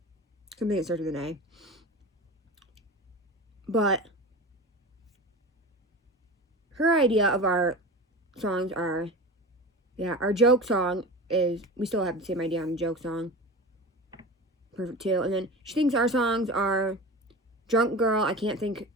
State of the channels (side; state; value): both; normal; correlation 0.31